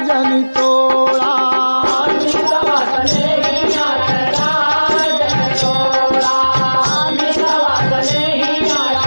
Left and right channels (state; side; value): inverted; both; correlation -1.00